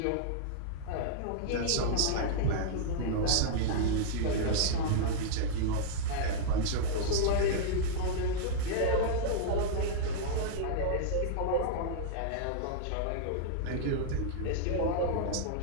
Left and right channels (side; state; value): both; different; correlation -0.01